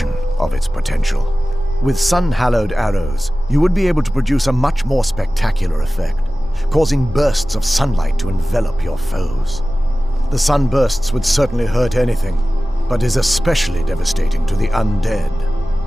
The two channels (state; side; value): normal; both; correlation 0.96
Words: of its potential. With sun-hallowed arrows, you would be able to produce a much more spectacular effect, causing bursts of sunlight to envelop your foes. The sunbursts would certainly hurt anything, but is especially devastating to the undead.